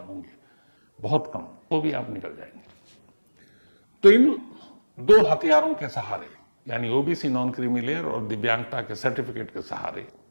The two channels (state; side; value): inverted; both; correlation -1.00